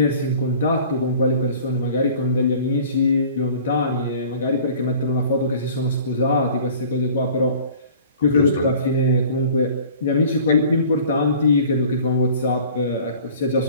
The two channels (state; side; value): inverted; both; correlation -0.48